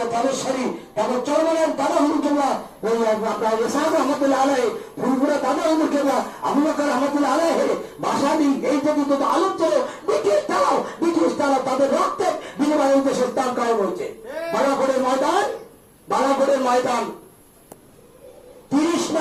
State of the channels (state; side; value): identical; both; correlation 1.00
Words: তালেশ্বরী, তারপর চরমানের দাদা হুজুর কেবলা, ওই আপনার ইসহাক রহমতুল্লাহ আলাইহি, ফুলপুরা দাদা হুজুর কেবলা, আবু বকর রহমতুল্লাহ আলাইহি, বাসাদি, এই পর্যন্ত আলোক চলে ব্রিটিশ তারাও তাদের রক্তের বিনিময়ে দেশে ইসলাম কায়েম হয়েছে। বালাকোটের ময়দান 30